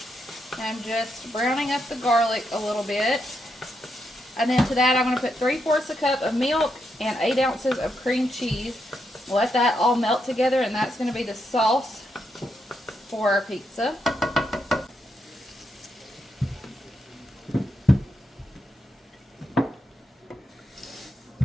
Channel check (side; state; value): both; normal; correlation 0.82